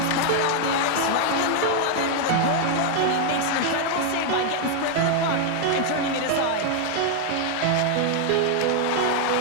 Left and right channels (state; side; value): different; both; correlation 0.00